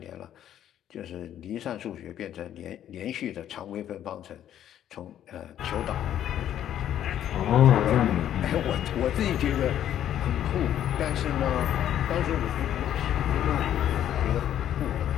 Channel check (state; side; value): quieter; right; 10.9 dB